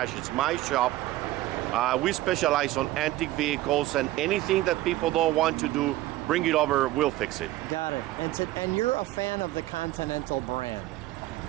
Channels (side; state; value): left; quieter; 16.2 dB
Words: It's my shop. We specialize on antique vehicles, and anything that people don't want to do, bring it over, we'll fix it. Got it. And you're a fan of the Continental brand.